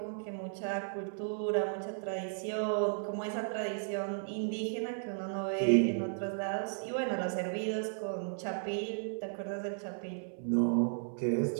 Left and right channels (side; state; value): left; silent; 55 dB below the other